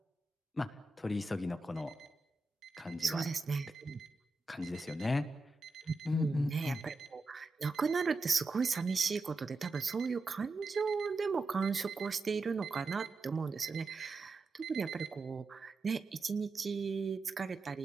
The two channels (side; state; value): left; quieter; 3.3 dB